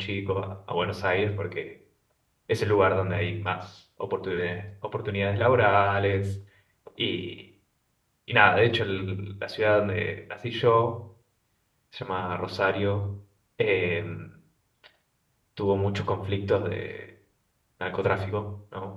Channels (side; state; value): both; identical; correlation 1.00